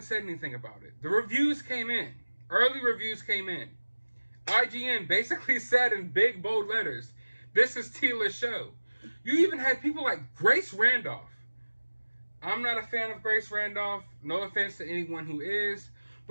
said anything about it. The reviews came in. Early reviews came in. IGN basically said in big, bold letters, this is Teela's show. You even had people like Grace Randolph. I'm not a fan of Grace Randolph. No offense to anyone who is.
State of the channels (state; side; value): inverted; both; correlation -1.00